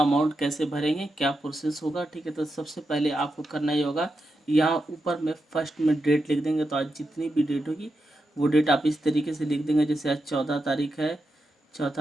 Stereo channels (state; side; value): normal; both; correlation 0.87